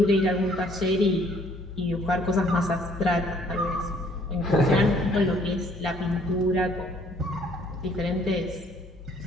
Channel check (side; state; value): both; normal; correlation 0.61